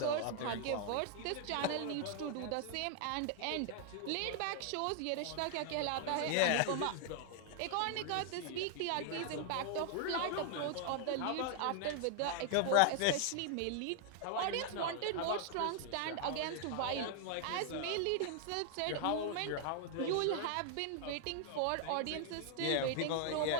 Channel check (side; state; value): both; different; correlation 0.00